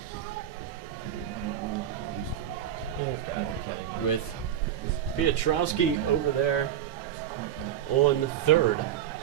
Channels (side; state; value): left; quieter; 10.4 dB